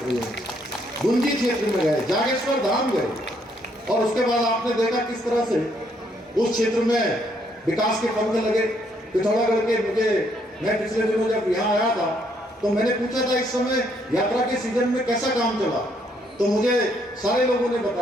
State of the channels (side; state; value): both; normal; correlation 0.71